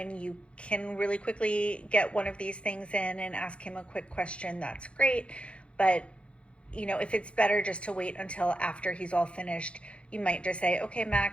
you can really quickly get one of these things in and ask him a quick question, that's great. But if it's better just to wait until after he's all finished, you might just say, okay,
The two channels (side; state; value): right; late; 0.060 ms